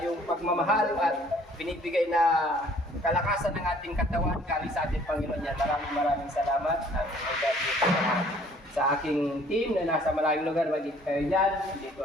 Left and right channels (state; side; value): normal; both; correlation 0.57